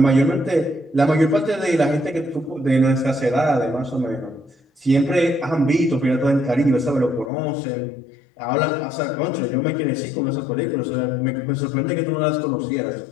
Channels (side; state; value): right; drops out; at 7.3 s